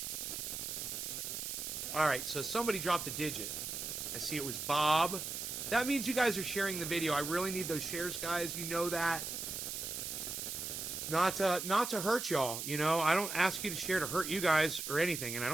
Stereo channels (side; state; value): right; noise; hiss, 5 dB below the sound